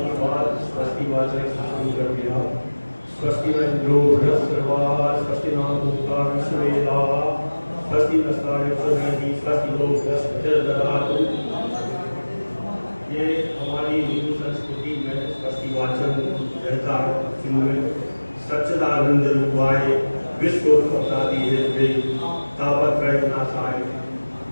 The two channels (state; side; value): inverted; both; correlation -1.00